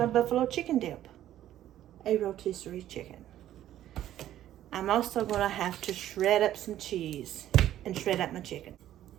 buffalo chicken dip. A rotisserie chicken. I'm also going to have to shred up some cheese and shred up my chicken.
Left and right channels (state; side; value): quieter; left; 12.4 dB